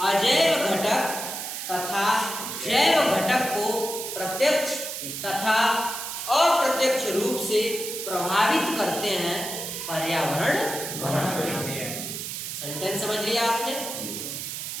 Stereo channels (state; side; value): noise; right; hiss, 6 dB below the sound